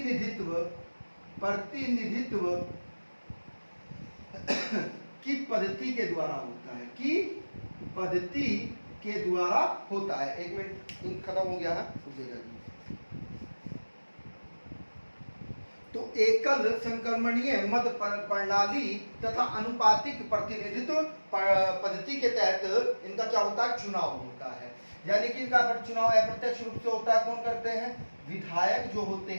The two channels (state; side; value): inverted; both; correlation -1.00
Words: की पद्धति के द्वारा होता है, की पद्धति के द्वारा होता है। 1 मिनट, इंक खत्म हो गया है, तो एकल संक्रमणीय मत प्रणाली तथा अनुपातिक प्रतिनिधित्व पद्धति के तहत इनका क्या होता है? चुनाव होता है। यानी कि इनका चुनाव अप्रत्यक्ष रूप से होता है। कौन करते हैं? विधायक जो होते